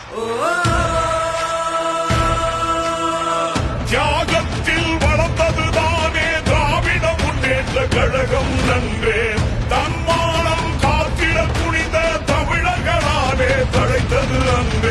தியாகத்தில் வளர்ந்ததுதானே திராவிட முன்னேற்ற கழகம் நன்றே. தன்மானம் காத்திட துணிந்த தமிழர்களாலே தழைத்தது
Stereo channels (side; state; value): both; identical; correlation 1.00